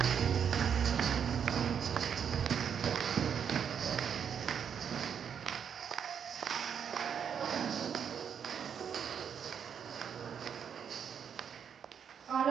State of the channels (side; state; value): left; quieter; 7.7 dB